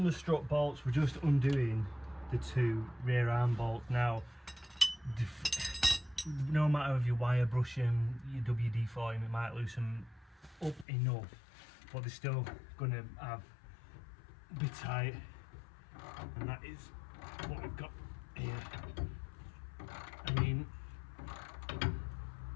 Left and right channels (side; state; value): right; drops out; at 10.9 s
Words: the strut bolts, we're just undoing the two rear arm bolts. Now, no matter if you wire brush them, you WD-40 them, it might loosen up enough, but they're still going to have a bit tight, and that is what we've got here. I mean,